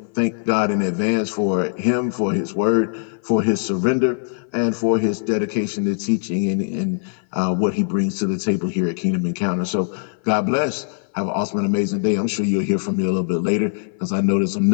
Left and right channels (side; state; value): right; silent; 59 dB below the other